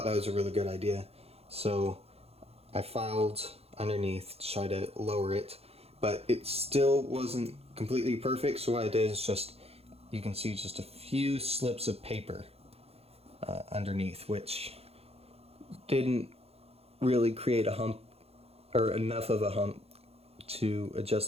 that was a really good idea, so I filed underneath to try to lower it, but it still wasn't completely perfect. So what I did is just, you can see just a few slips of paper underneath, which didn't really create a hump or enough of a hump to adjust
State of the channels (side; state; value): left; late; 0.29 ms